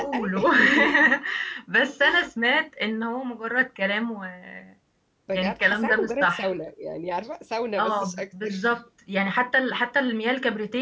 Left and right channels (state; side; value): identical; both; correlation 1.00